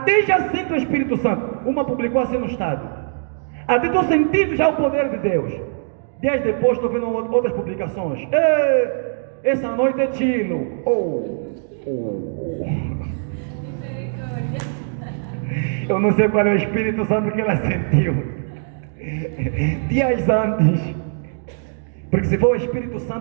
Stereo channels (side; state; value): left; silent; digital silence